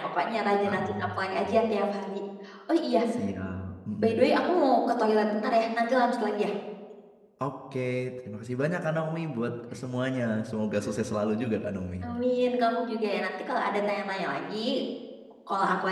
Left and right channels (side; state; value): both; identical; correlation 1.00